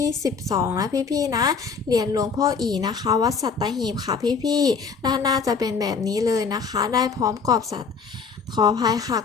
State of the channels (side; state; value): right; quieter; 5.5 dB